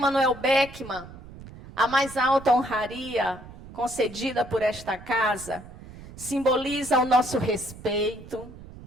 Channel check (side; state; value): right; noise; rumble, 17 dB below the sound